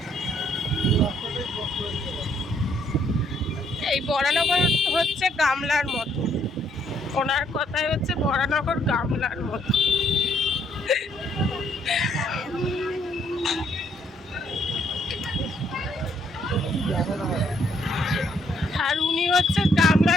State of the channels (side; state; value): both; normal; correlation 0.69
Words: এই বরানগর হচ্ছে গামলার মতো, ওনার কথাই হচ্ছে বরানগর গামলার মতো। আর উনি হচ্ছে